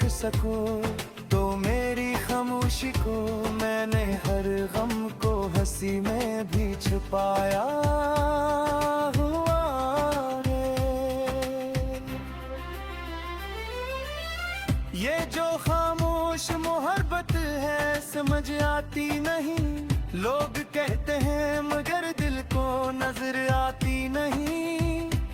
सको तो मेरी खामोशी को, मैंने हर गम को हंसी में भी छुपाया हुआ है। ये जो खामोश मोहब्बत है समझ आती नहीं, लोग कहते हैं मगर दिल को नजर आती नहीं।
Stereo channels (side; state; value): both; identical; correlation 1.00